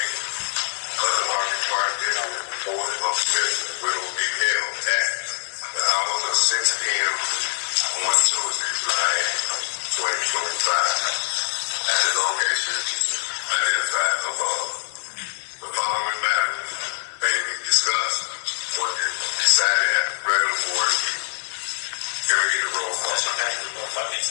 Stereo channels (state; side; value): silent; right; 63 dB below the other